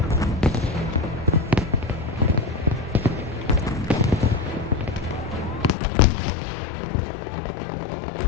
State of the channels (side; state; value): right; drops out; at 5.8 s